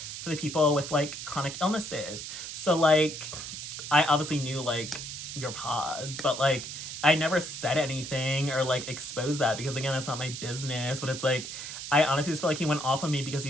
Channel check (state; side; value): noise; right; hiss, 8 dB below the sound